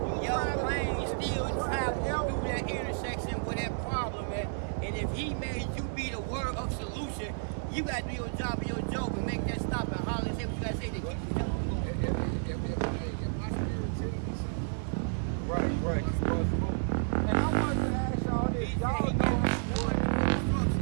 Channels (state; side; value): silent; left; 57 dB below the other